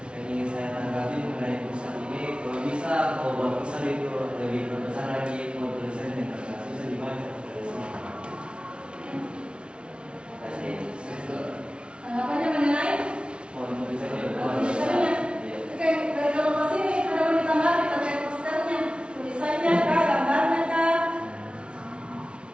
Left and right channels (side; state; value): left; late; 0.058 ms